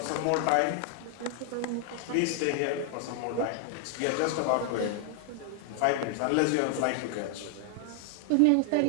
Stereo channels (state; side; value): different; both; correlation 0.00